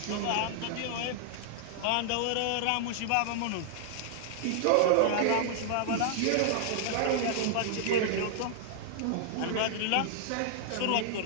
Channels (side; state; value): both; different; correlation -0.01